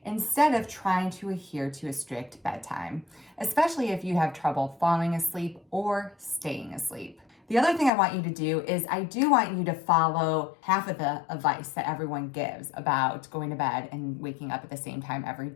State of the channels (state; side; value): drops out; right; at 7.9 s